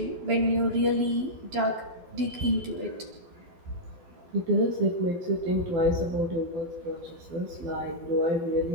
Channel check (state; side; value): late; left; 12 ms